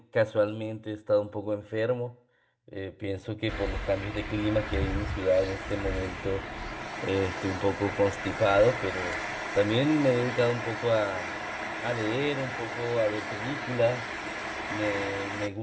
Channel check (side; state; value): both; identical; correlation 1.00